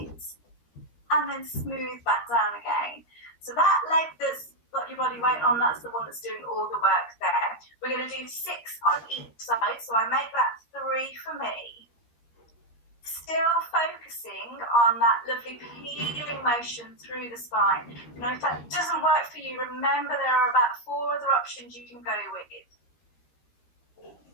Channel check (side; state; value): right; late; 13 ms